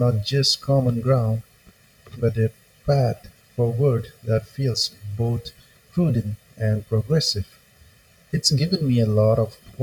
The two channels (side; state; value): both; identical; correlation 1.00